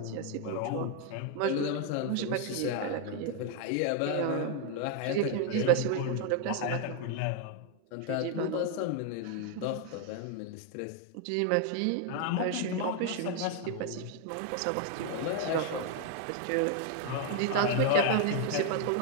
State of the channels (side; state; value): both; different; correlation 0.01